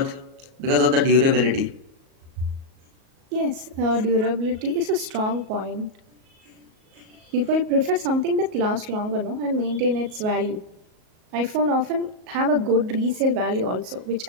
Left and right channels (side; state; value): left; late; 38 ms